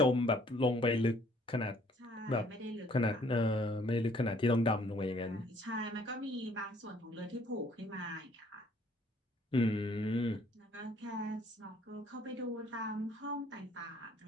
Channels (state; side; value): normal; both; correlation 0.60